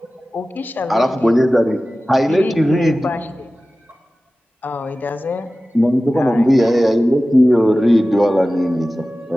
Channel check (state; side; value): normal; both; correlation 0.96